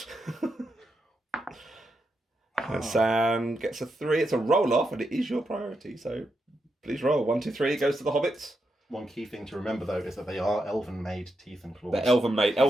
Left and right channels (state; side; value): normal; both; correlation 0.84